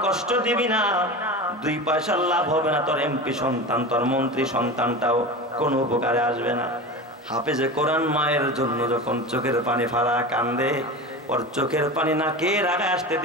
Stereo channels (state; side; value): normal; both; correlation 0.28